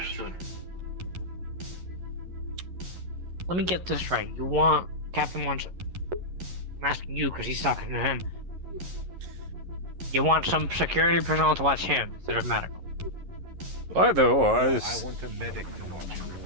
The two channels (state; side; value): late; left; 11 ms